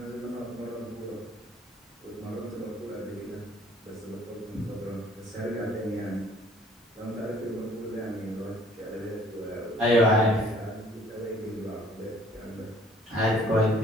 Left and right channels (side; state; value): both; normal; correlation 0.57